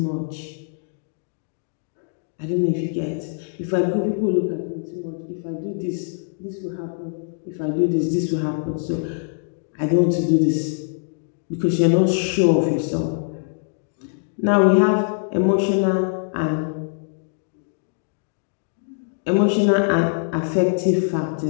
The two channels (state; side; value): silent; right; digital silence